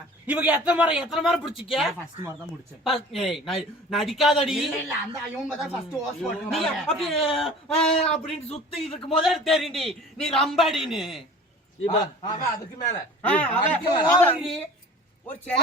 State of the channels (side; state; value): both; normal; correlation 0.43